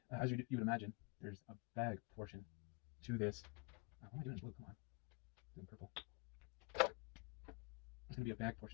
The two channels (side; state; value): right; quieter; 29.6 dB